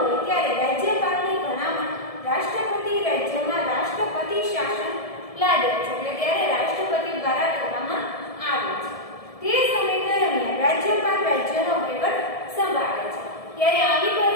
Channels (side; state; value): right; late; 1.7 ms